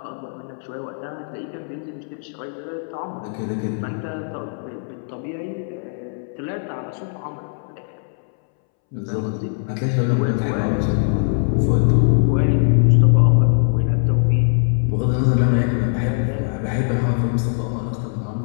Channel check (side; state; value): right; silent; 65 dB below the other